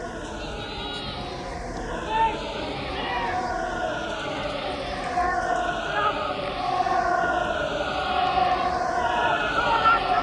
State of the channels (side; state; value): both; identical; correlation 1.00